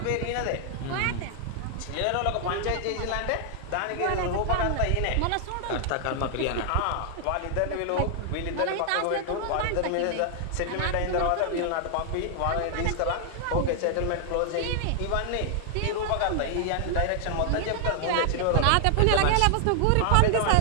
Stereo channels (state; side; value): different; both; correlation 0.00